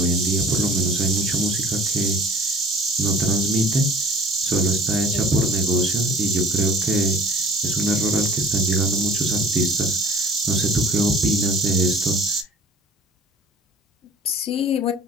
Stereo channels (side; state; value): both; normal; correlation 0.49